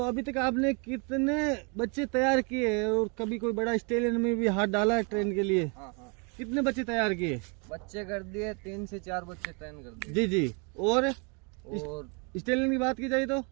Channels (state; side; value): quieter; left; 34.4 dB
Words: अभी तक आपने कितने बच्चे तैयार किए हैं और कभी कोई बड़ा स्टेडियम में भी हाथ डाला है ट्रेन के लिए? हाँ हाँ। कितने बच्चे तैयार किए? बच्चे कर दिए 3 से 4 बच्चे ट्रेन कर दिए। जी जी। और स्टेलियन की बात की जाए तो